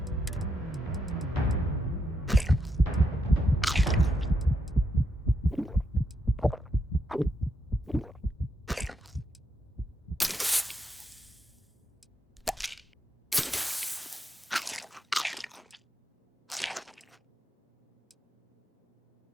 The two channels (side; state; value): both; normal; correlation 0.81